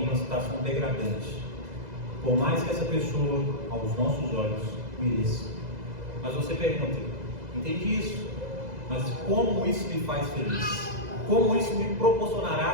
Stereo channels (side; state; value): left; late; 2.0 ms